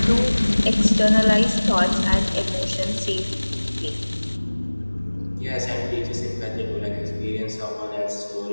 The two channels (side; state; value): both; inverted; correlation -1.00